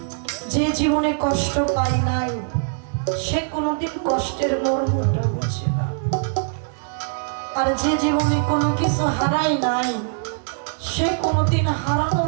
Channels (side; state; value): left; silent; digital silence